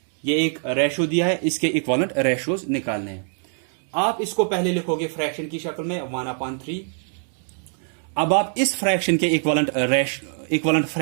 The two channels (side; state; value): left; silent; 56 dB below the other